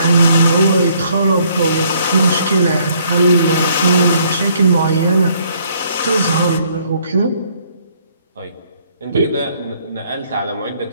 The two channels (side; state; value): both; inverted; correlation -0.65